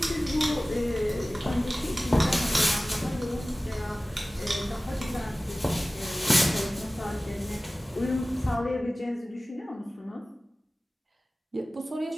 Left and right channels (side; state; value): both; normal; correlation 0.97